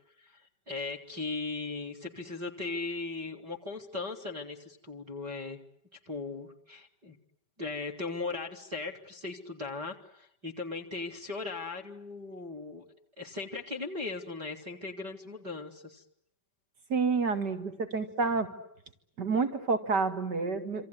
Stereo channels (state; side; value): late; left; 5.1 ms